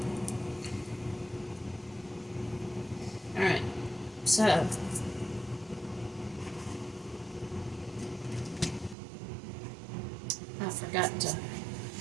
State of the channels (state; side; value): drops out; left; at 9.0 s